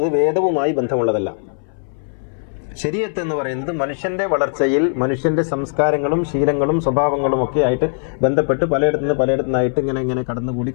വേദവുമായി ബന്ധമുള്ളതല്ല. ശരീഅത്ത് എന്ന് പറയുന്നത് മനുഷ്യന്റെ വളർച്ചയിൽ മനുഷ്യന്റെ സംസ്കാരങ്ങളും ശീലങ്ങളും സ്വഭാവങ്ങളും ഒക്കെ ആയിട്ട് ബന്ധപ്പെട്ട് പലയിടത്തുനിന്നായിട്ട് ഇങ്ങനെ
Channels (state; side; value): silent; right; 63 dB below the other